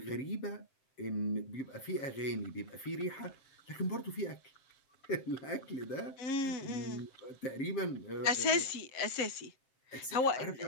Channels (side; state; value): right; late; 7.5 ms